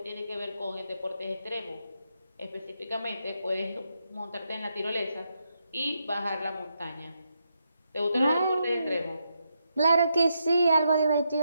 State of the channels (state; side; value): inverted; both; correlation -0.82